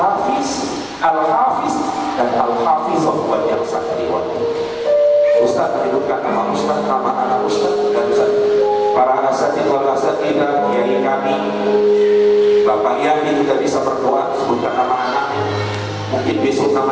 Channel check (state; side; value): identical; both; correlation 1.00